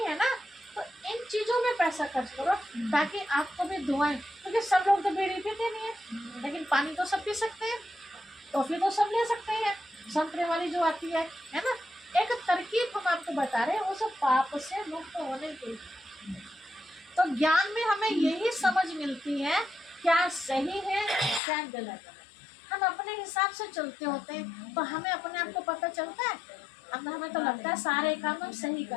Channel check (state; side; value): drops out; right; at 21.4 s